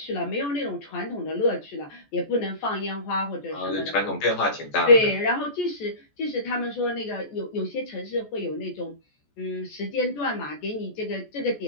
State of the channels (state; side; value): late; right; 14 ms